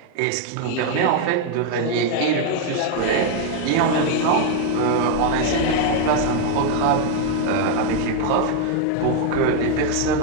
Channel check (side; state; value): both; different; correlation 0.00